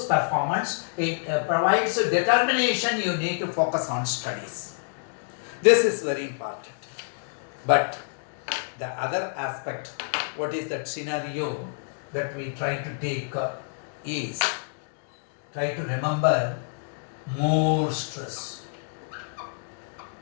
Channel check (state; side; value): silent; right; digital silence